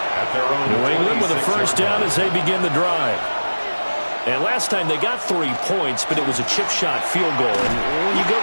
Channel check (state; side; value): inverted; both; correlation -1.00